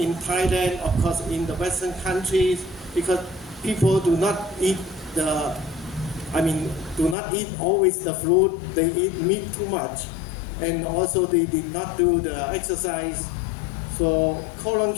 Thailand, of course, in the Western countries, because people do not eat do not eat always the fruit. They eat meat too much, and also they did not do the exercise. So colon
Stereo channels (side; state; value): right; drops out; at 7.2 s